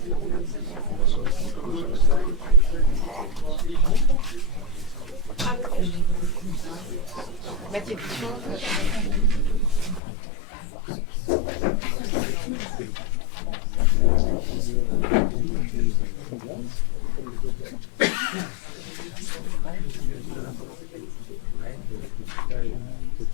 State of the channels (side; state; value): right; drops out; at 10.0 s